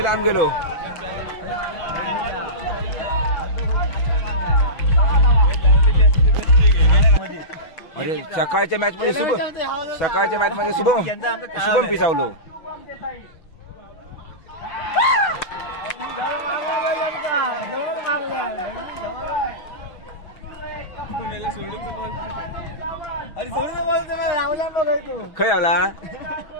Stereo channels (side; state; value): right; late; 6.1 ms